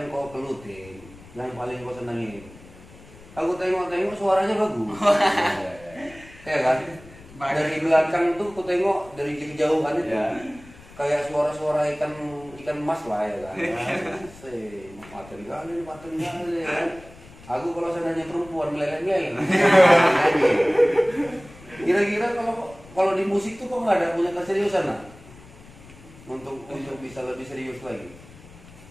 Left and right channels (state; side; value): noise; left; rumble, 21 dB below the sound